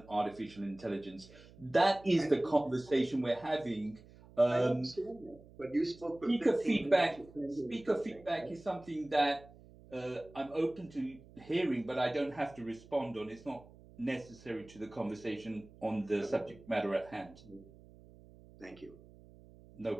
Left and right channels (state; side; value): noise; right; hum, 22 dB below the sound